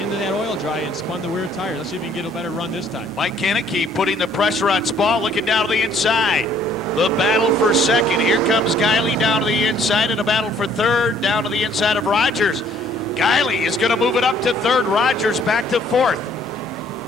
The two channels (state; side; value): normal; both; correlation 0.61